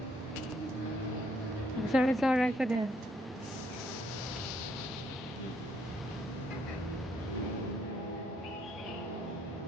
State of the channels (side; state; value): both; normal; correlation 0.70